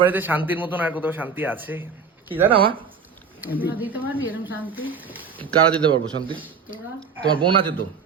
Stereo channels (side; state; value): left; quieter; 5.7 dB